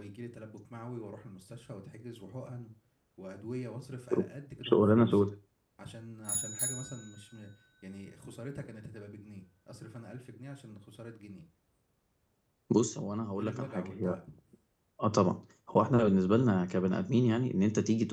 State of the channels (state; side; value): identical; both; correlation 1.00